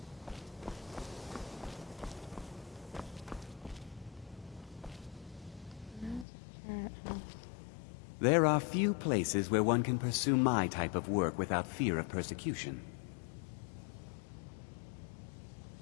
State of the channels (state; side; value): drops out; right; at 6.2 s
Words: There are few places where one can pursue my type of work without fear of persecution.